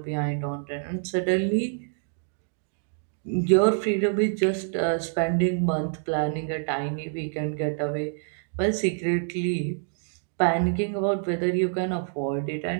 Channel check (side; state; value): left; silent; digital silence